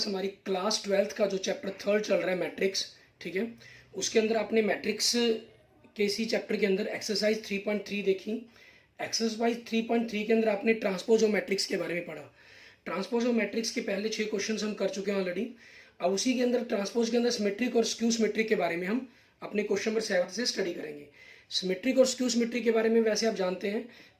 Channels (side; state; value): both; identical; correlation 1.00